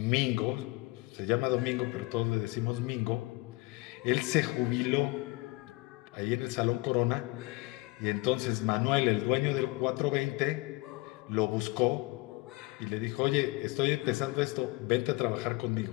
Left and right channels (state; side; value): quieter; right; 23.8 dB